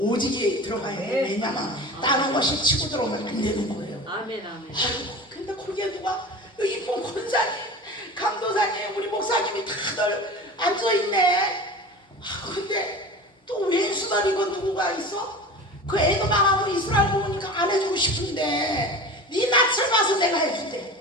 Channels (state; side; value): normal; both; correlation 0.34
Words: 들어가야 돼. 왜냐면 다른 것이 치고 들어오면 안 되는 거예요. 아멘. 아이고, 근데 거기에 누가 이쁜 권사님, 강도사님, 우리 목사님이 다들 앉아있네. 근데 또 왼수다리 건 누구가 있어? 그 애도 망하고 이스라엘 보니까 안 해주고 싶은데 네 낯을 봐서 내가 해줄게.